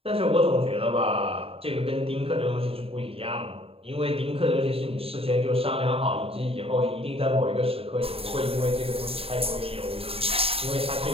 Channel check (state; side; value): late; left; 0.28 ms